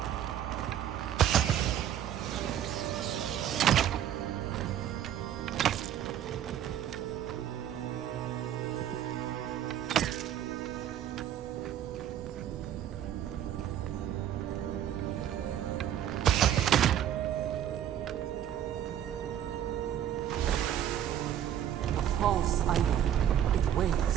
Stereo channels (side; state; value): left; quieter; 10.6 dB